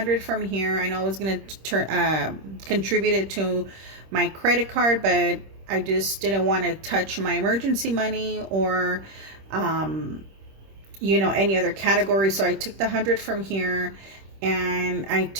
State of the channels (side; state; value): left; late; 26 ms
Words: from here. I know I was gonna contribute it to my credit card, but I just didn't want to touch my emergency money or you know, any other category. So I took the 100 from here, and I